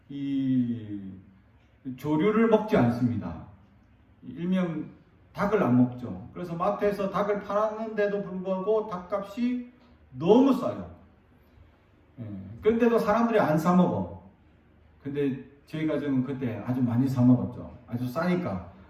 이 조류를 먹지 않습니다. 일명 닭을 안 먹죠. 그래서 마트에서 닭을 팔았는데도 불구하고 닭값이 너무 싸요. 그런데도 사람들이 안 사 먹어. 근데 저희 가정은 그때 아주 많이 사 먹었죠. 아주 싸니까.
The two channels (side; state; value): both; identical; correlation 1.00